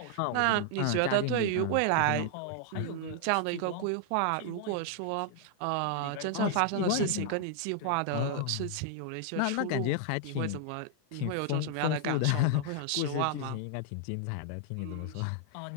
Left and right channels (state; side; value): different; both; correlation 0.00